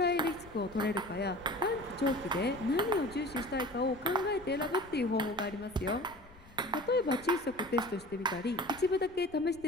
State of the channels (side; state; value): left; noise; rumble, 22 dB below the sound